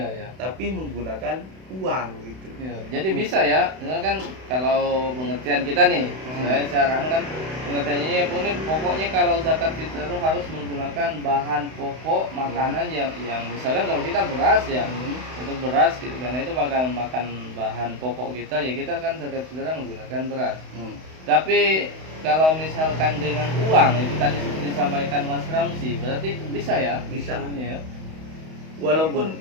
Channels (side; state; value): left; late; 32 ms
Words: tapi menggunakan uang gitu. Jadi bisa ya, ini kan kalau pengertian kita nih, saya kan pengertiannya ini pokoknya kalau zakat fitrah itu harus menggunakan bahan pokok makanan yang misalnya kalau kita beras ya, untuk beras gitu, karena itu makan bahan pokok kita ya, kita kan zakat fitrah menggunakan beras. Tapi kalau misalkan dengan uang itu tadi seperti disampaikan Mas Ramsi, berarti bisa ya? Bisa. Ya.